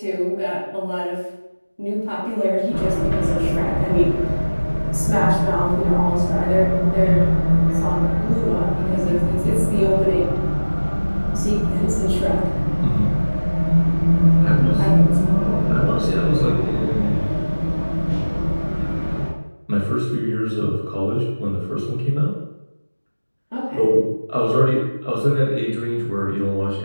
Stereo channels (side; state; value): both; inverted; correlation -1.00